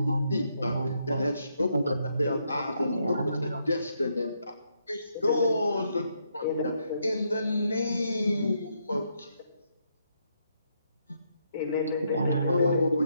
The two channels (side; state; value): both; inverted; correlation -0.77